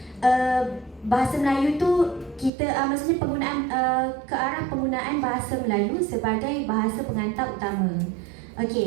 bahasa Melayu tu kita maksudnya penggunaan ke arah penggunaan bahasa Melayu sebagai bahasa pengantar utama.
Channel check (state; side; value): drops out; left; at 2.5 s